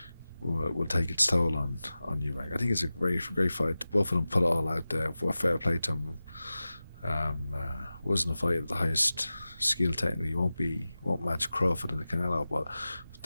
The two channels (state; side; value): inverted; both; correlation -0.95